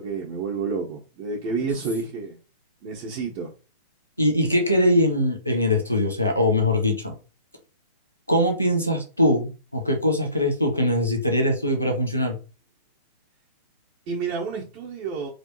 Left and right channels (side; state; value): both; inverted; correlation -0.49